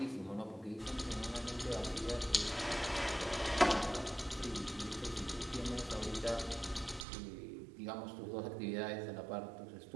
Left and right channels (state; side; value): drops out; left; at 7.1 s